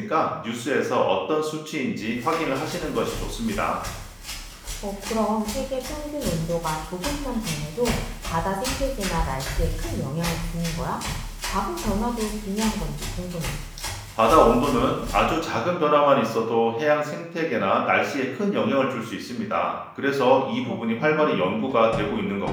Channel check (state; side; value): identical; both; correlation 1.00